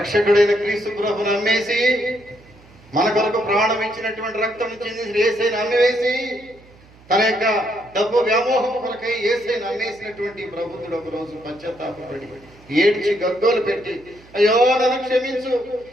క్రీస్తు ప్రభుని అమ్మేసి, మన కొరకు ప్రాణం ఇచ్చినటువంటి రక్తం చెందిన యేసయ్యను అమ్మివేసి, తన యొక్క డబ్బు వ్యామోహం కొరకై యేసయ్యను అమ్మేసినటువంటి ప్రభుత్వుడు ఒక రోజు పశ్చాత్తాపపడి ఏడ్చి గగ్గోలు పెట్టి, అయ్యో నన్ను క్షమించు,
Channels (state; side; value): noise; right; hum, 26 dB below the sound